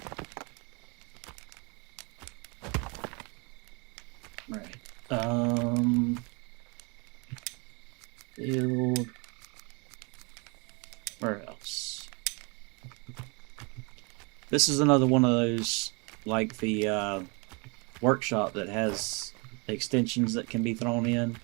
Right. Build warehouse. This is another one of those, like the workshop that has extensions that can be thrown in.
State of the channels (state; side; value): quieter; left; 31.1 dB